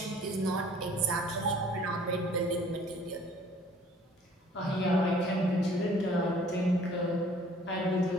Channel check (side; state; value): both; normal; correlation 0.54